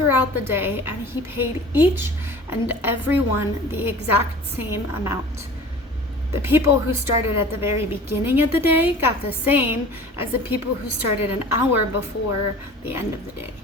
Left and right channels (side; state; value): both; normal; correlation 0.42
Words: the day, and he paid each and every one the exact same amount. The people who started at the very beginning of the day got the same as the people who started an hour before the end of the day.